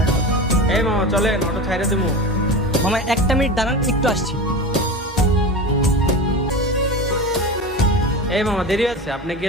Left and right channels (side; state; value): both; normal; correlation 0.27